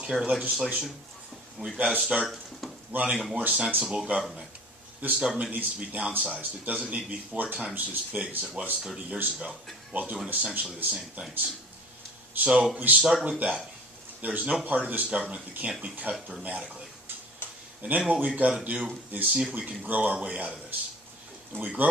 legislation. And we've got to start running a more sensible government. This government needs to be downsized. It doesn't need to be 4 times as big as it was 30 years ago while doing essentially the same things. So we start with that. There's no part of this government that can't be cut dramatically. And then what we've got to do is see if we can grow our way out of this. And we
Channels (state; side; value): normal; both; correlation 0.42